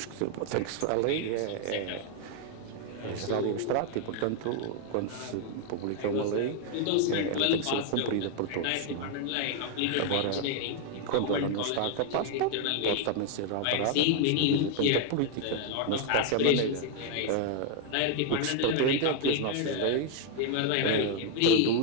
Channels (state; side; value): different; both; correlation 0.00